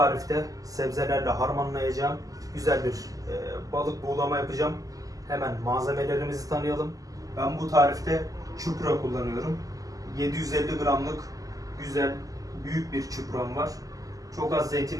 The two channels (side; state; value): left; late; 0.17 ms